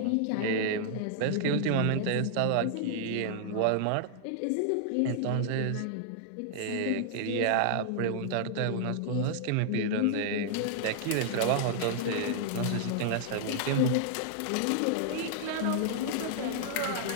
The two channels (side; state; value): both; different; correlation -0.01